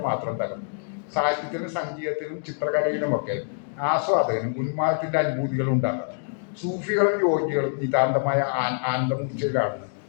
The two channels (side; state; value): right; silent; digital silence